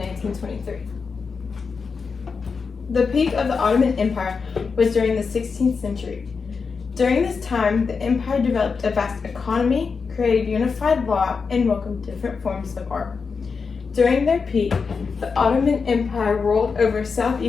The peak of the Ottoman Empire was during the 16th century. During this time, the empire developed a vast economy, created unified law, and welcomed different forms of art. During their peak, the Ottoman Empire ruled over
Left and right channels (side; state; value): right; quieter; 5.2 dB